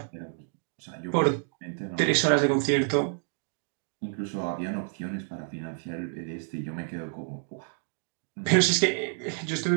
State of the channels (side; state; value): left; silent; 59 dB below the other